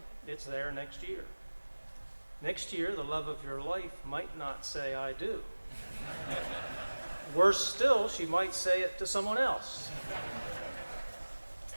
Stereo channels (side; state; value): both; inverted; correlation -1.00